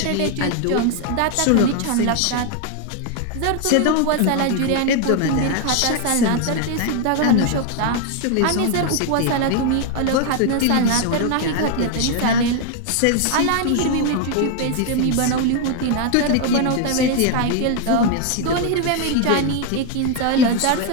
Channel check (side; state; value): both; different; correlation 0.01